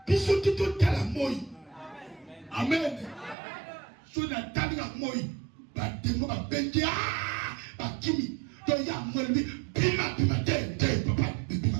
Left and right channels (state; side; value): drops out; left; at 3.4 s